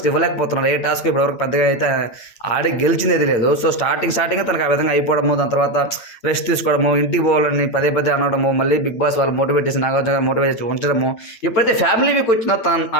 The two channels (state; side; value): late; right; 8.9 ms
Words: ఇవ్వలేకపోతున్నారు. ఏ టాస్క్ ఇప్పటివరకు పెద్దగా అయితే ఆడి గెలిచింది లేదు. సో స్టార్టింగ్ తనకు ఆ విధంగా అయిపోవడము, దాని తర్వాత రెస్ట్ తీసుకోవడము, ఇంటికి పోవాలని పదే అనడము, మళ్ళీ బిగ్ బాస్ వాళ్ళు మోటివేట్ చేసి నాగార్జున గారు మోటివేట్ చేసి ఉంచడము. ఎప్పుడైతే ఫ్యామిలీ వీక్ వచ్చిందో